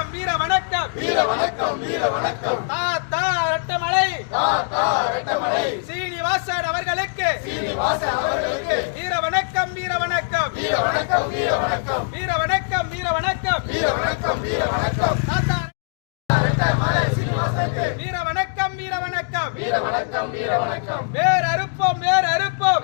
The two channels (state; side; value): silent; right; digital silence